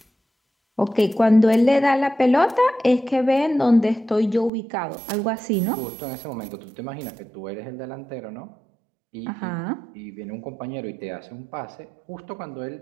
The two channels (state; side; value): drops out; left; at 4.5 s